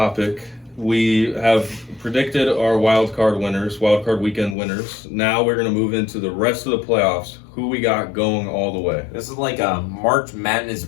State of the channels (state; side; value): drops out; right; at 4.5 s